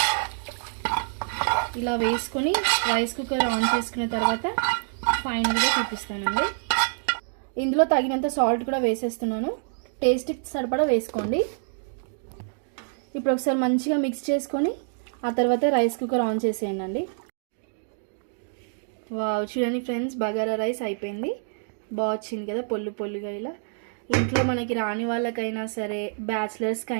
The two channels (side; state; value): left; silent; digital silence